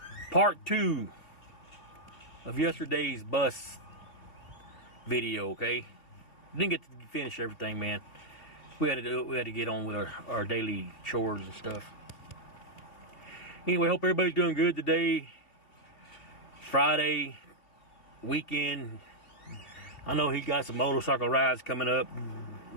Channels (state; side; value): late; right; 3.5 ms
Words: part 2 of yesterday's bus video, okay? Didn't get to finish everything, man. We had to get on with our daily chores and stuff. Anyway, hope everybody's doing good today. Friday, weekend. I know he got some motorcycle rides coming up.